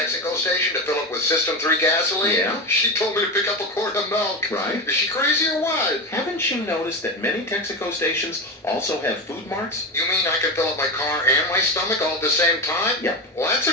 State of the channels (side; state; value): both; normal; correlation 0.19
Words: station to fill up with System 3 gasoline? Yeah? She told me to pick up a quart of milk. Right. Is she crazy or what? Haven't you noticed that many Texaco stations also have food marts? You mean I can fill up my car and my stomach all at the same time? Yep. Well, that's